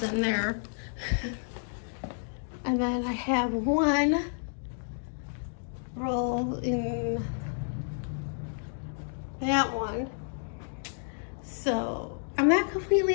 in there. And then I have 1 roll in that one. So I'm not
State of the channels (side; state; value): right; silent; digital silence